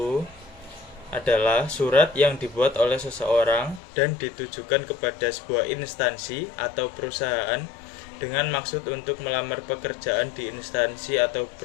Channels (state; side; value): drops out; right; at 3.8 s